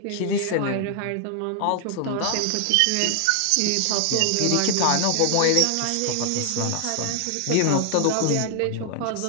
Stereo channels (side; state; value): both; different; correlation 0.00